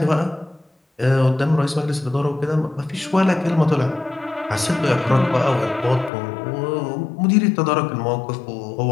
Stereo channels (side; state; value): right; drops out; at 6.1 s